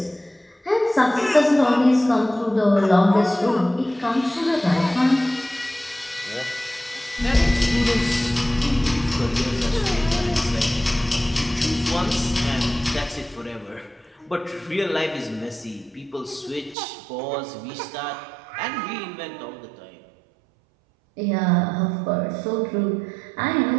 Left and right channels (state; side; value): drops out; left; at 16.8 s